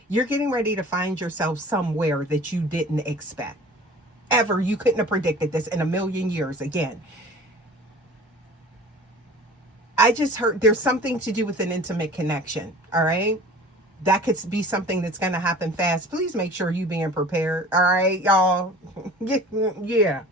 you're getting ready to find yourself somewhere that you didn't expect. Ever. You couldn't have predicted this in a million years. Again, I just heard there's something to do with an intimate connection. All right. That could be something that's going to happen fast. Please make sure you being prepared. All right, y'all. Yeah.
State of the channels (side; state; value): both; normal; correlation 0.43